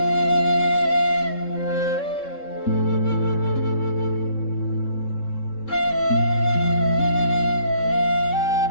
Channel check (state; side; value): late; right; 3.7 ms